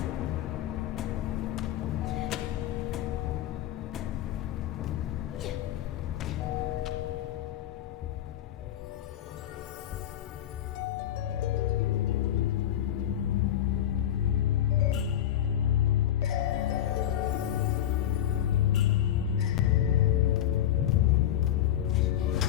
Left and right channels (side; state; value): right; quieter; 11.3 dB